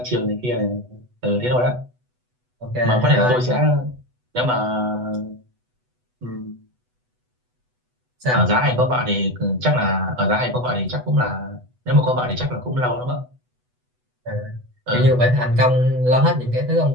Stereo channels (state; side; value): late; left; 8.1 ms